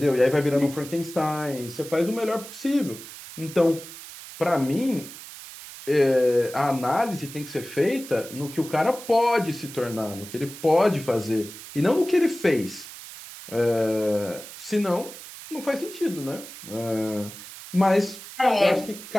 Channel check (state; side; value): noise; right; hiss, 14 dB below the sound